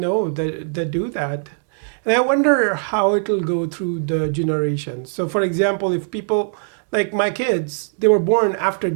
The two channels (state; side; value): silent; left; digital silence